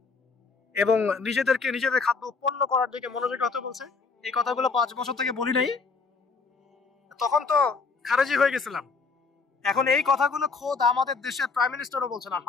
এবং নিজেদের খাদ্য উৎপন্ন করার দিকে মনোযোগী হতে বলছে। এই কথাগুলো 5 বছর থেকে বলি নাই, তখন তো খারেজি হয়ে গেছিলাম। এখন এই কথাগুলো খোদ আমাদের দেশের প্রাইম মিনিস্টারও বলছেন,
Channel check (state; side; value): quieter; right; 4.6 dB